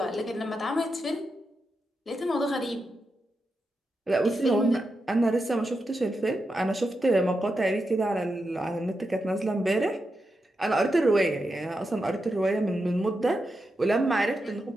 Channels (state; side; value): normal; both; correlation 0.87